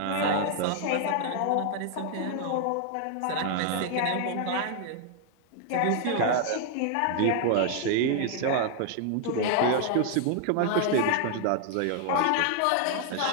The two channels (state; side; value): different; both; correlation 0.00